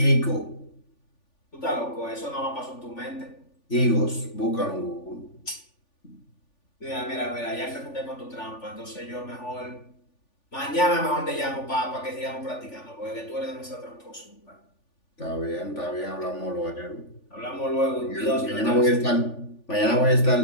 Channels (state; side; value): late; right; 3.5 ms